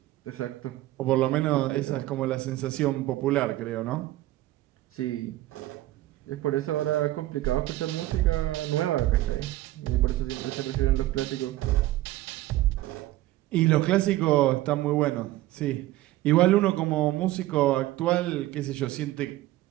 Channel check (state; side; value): quieter; left; 16.2 dB